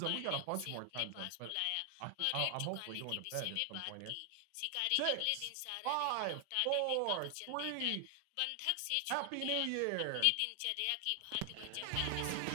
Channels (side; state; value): both; different; correlation 0.00